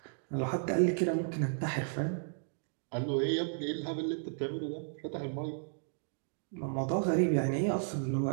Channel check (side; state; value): left; silent; digital silence